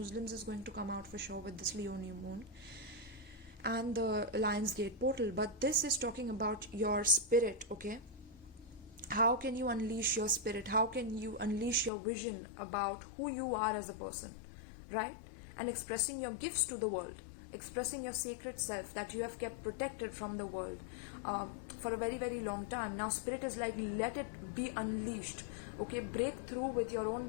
is going to come out for sure with this Leo new moon and the Lion's Gate portal. But this is talking about your spirit. Okay, how can you unleash your spirit? How can you unleash your vision about who you are as a person, right? And expressing your gifts to the world, expressing your sacred self that you have kept protected from the world for a very, very long time. Now spirit is like, let it be unleashed. Okay, break through with your own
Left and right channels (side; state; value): right; drops out; at 11.9 s